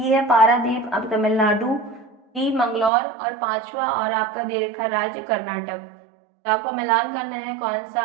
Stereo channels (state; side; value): drops out; left; at 2.9 s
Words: है पारादीप, अब तमिलनाडु, डी मंगलौर और पांचवा और आपका दे रखा राज्य कर्नाटक। तो आपको मिलान करना है कौन सा